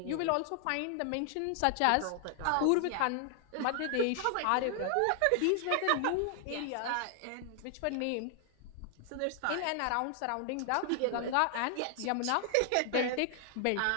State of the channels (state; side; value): different; both; correlation 0.00